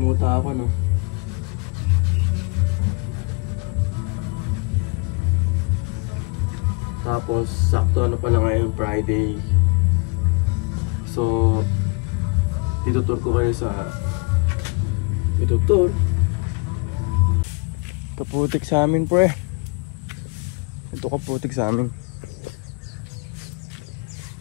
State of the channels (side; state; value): right; quieter; 29.1 dB